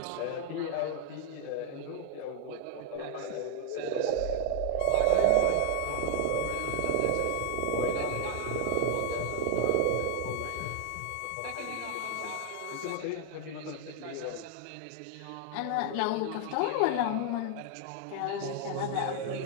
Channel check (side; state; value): both; different; correlation 0.00